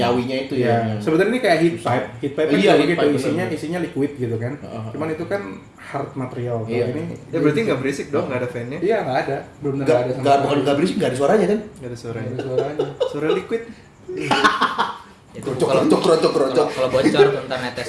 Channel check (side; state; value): both; identical; correlation 1.00